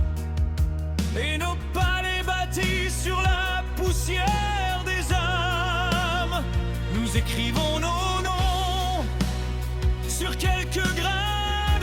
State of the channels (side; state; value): both; identical; correlation 1.00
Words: et nos palais bâtis sur la poussière des âmes, nous écrivons nos noms sur quelques grains